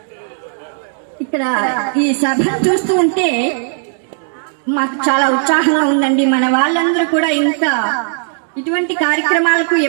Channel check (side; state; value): left; silent; digital silence